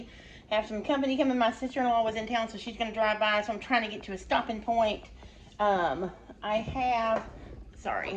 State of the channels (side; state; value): both; identical; correlation 1.00